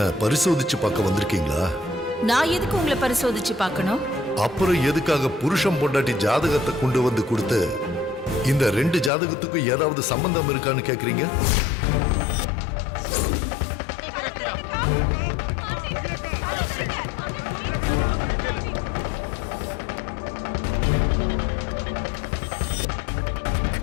பரிசோதிச்சு பார்க்க வந்திருக்கீங்களா? நான் எதுக்கு உங்களை பரிசோதிச்சு பார்க்கணும்? அப்புறம் எதுக்காக புருஷன் பொண்டாட்டி ஜாதகத்தை கொண்டு வந்து கொடுத்து இந்த 2 ஜாதகத்துக்கும் ஏதாவது சம்பந்தம் இருக்கான்னு கேக்குறீங்க?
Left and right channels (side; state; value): right; drops out; at 9.1 s